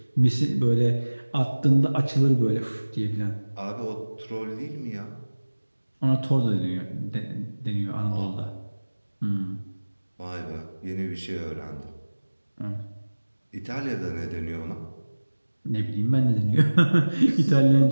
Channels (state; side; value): inverted; both; correlation -1.00